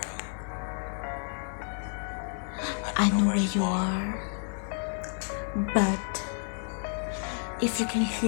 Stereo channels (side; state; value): right; silent; 58 dB below the other